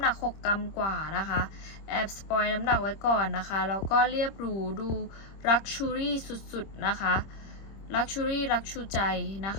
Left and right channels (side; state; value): right; late; 26 ms